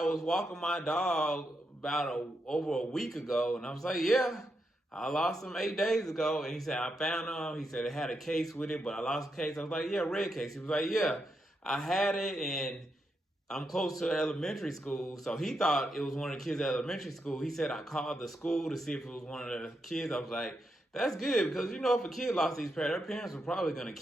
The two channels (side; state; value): both; normal; correlation 0.83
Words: was walking my dog over a week ago. And I was like, yeah, I lost him 8 days ago. And he said, I found them. He said, it had a case with it, but I lost the case. I was like, yeah, red case. He was like, yeah, I had it, and I'm close to elementary school, so he thought it was one of the kids at elementary school. He said I called the school to see if it was one of the kids. I was like, that's good, because if a kid lost these parents, their parents were probably going to